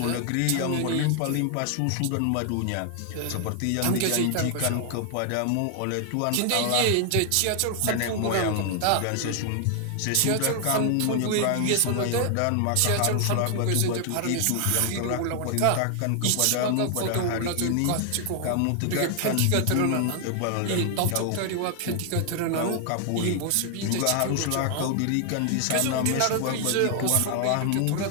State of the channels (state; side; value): different; both; correlation 0.00